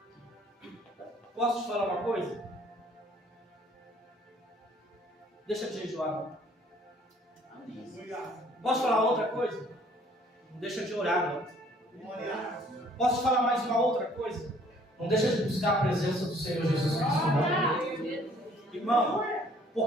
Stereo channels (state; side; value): normal; both; correlation 0.59